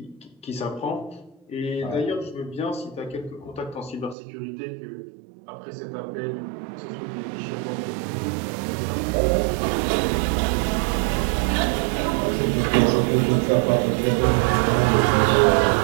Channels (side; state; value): left; drops out; at 4.2 s